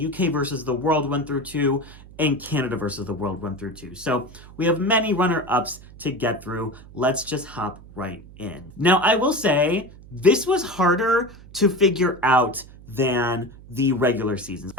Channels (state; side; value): noise; right; hum, 20 dB below the sound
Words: versus the World 1 through 2, and Canada versus the World 1 through 2. So we have many runner-ups to get through. Let's just hop right in. Now, I will say, this was harder to figure out than the regular seasons.